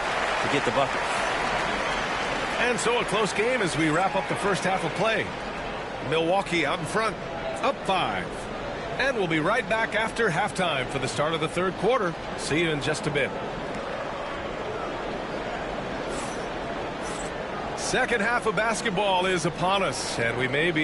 to get the bucket. And so a close game as we wrap up the first half of play. Milwaukee out in front, up 5. And we'll be right back after halftime for the start of the third quarter. See you in just a bit. Second half of basketball is upon us, and we may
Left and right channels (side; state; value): both; identical; correlation 1.00